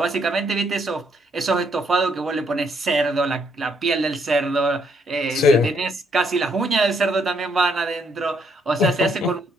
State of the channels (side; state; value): both; normal; correlation 0.72